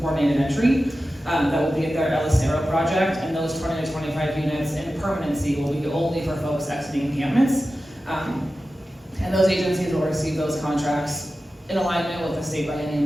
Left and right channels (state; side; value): normal; both; correlation 0.93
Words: entry. That will be at their El Acero project, and those 20 to 25 units in permanency will be only for folks exiting encampments. And those agencies will receive those contracts in alignment with the state